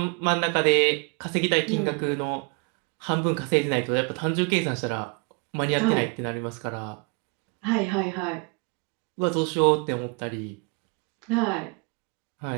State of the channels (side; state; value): left; quieter; 32.5 dB